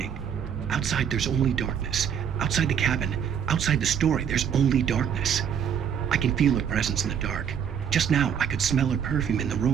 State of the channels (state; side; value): quieter; left; 8.2 dB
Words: Outside, there's only darkness. Outside the cabin, outside the story, there's only darkness. I can feel her presence in the dark. Just now, I could smell her perfume in the